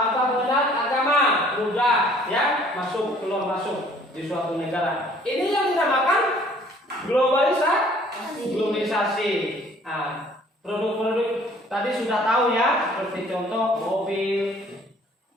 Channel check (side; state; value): both; normal; correlation 0.56